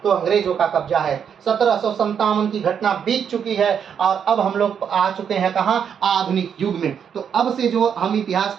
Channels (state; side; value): quieter; left; 7.7 dB